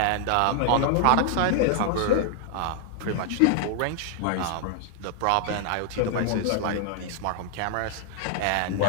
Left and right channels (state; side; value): different; both; correlation 0.00